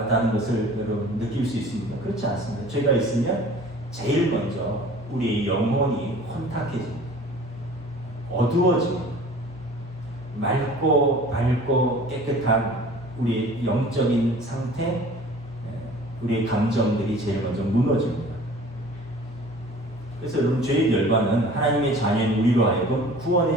것을 여러분 느낄 수 있습니까? 그렇지 않습니다. 죄가 있으면 제일 먼저 우리의 영혼이 혼탁해집니다. 어두워집니다. 맑고 밝고 깨끗한 우리의 영적인 상태, 우리의 감정들이 제일 먼저 무너집니다. 그래서 여러분, 죄의 결과는 하나님의 자녀인 우리로 하여금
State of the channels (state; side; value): normal; both; correlation 0.46